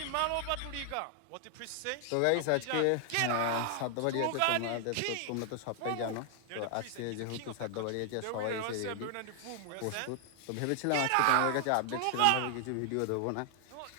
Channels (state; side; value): different; both; correlation 0.00